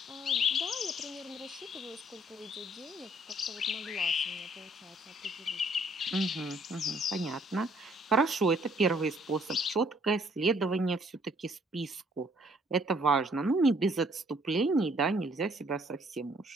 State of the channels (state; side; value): normal; both; correlation 0.63